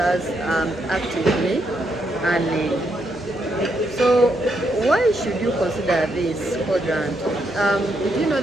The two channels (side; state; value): both; normal; correlation 0.78